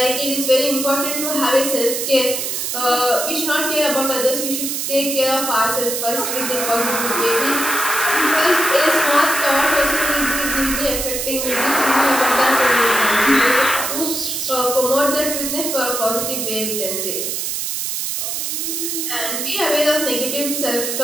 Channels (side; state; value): right; noise; hiss, 2 dB below the sound